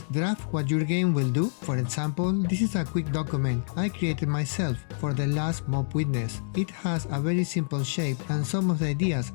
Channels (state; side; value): silent; right; digital silence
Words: draft what your game will do. For example, this is a quick document I created myself for the last mob witness. It has a very simple shape and some of the ideas